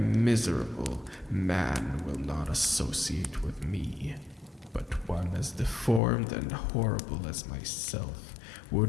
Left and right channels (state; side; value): drops out; right; at 6.0 s